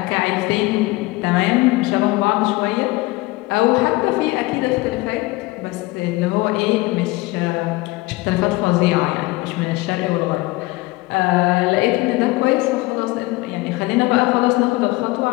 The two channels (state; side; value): quieter; right; 21.4 dB